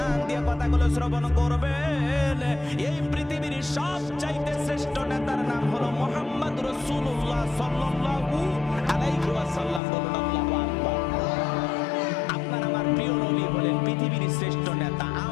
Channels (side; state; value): right; drops out; at 9.8 s